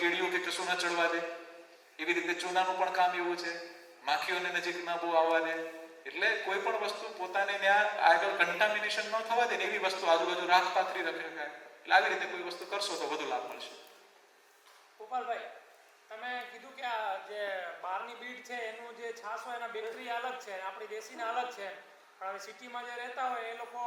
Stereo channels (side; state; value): both; identical; correlation 1.00